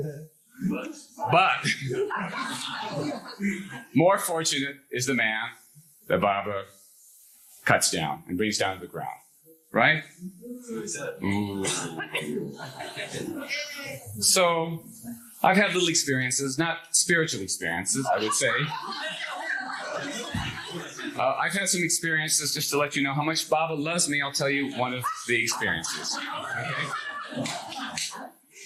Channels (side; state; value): both; identical; correlation 1.00